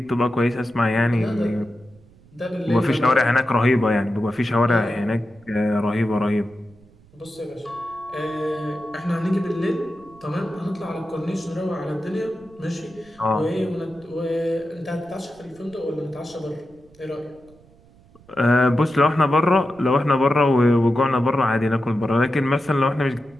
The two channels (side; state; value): right; noise; rumble, 27 dB below the sound